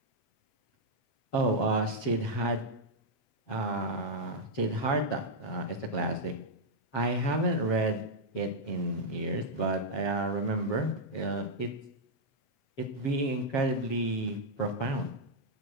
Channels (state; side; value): late; right; 7.4 ms